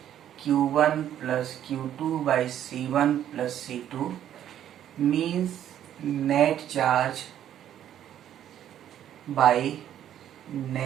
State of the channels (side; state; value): left; quieter; 10.8 dB